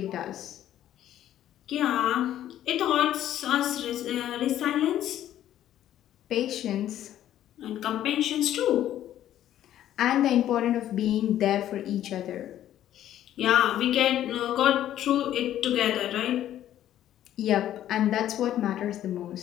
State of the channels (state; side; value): quieter; right; 12.0 dB